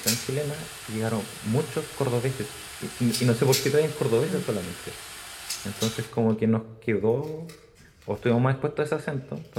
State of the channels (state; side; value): identical; both; correlation 1.00